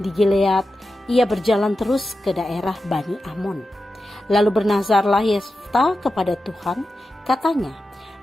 Gilead ia berjalan terus ke daerah Bani Amon. Lalu bernazarlah Yefta kepada Tuhan, katanya,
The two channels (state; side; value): normal; both; correlation 0.91